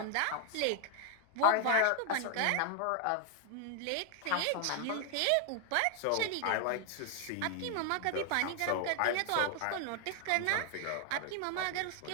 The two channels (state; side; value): different; both; correlation 0.00